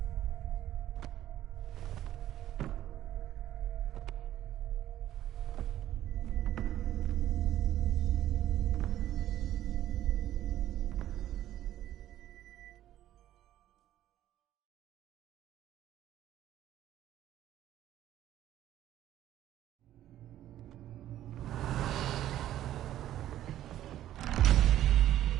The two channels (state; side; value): quieter; left; 12.7 dB